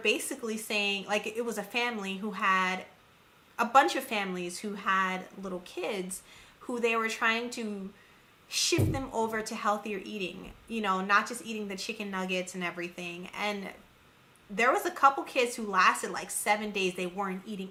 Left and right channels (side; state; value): both; identical; correlation 1.00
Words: saying, like, it was a family who had a bunch of families who had little kids who they were trying to shift them over to healthier eating, not just eating the chicken nuggets and everything. And there was a couple kids who lasted like 7 days. They weren't eating